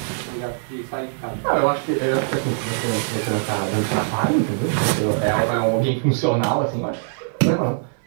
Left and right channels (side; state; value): left; silent; digital silence